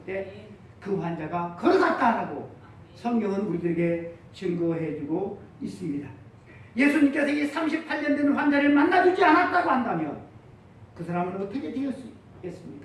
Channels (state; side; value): identical; both; correlation 1.00